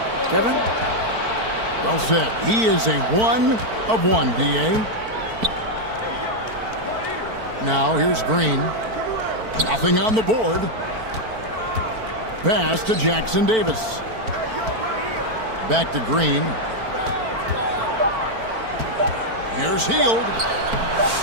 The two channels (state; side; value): late; left; 4.5 ms